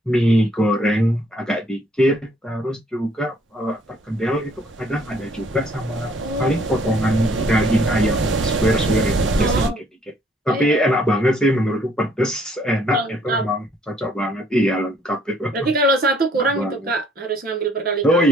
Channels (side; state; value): both; normal; correlation 0.63